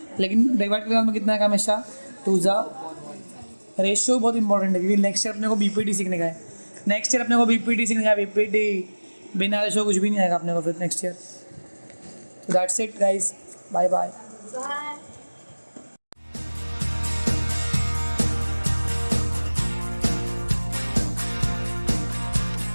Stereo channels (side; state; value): both; inverted; correlation -1.00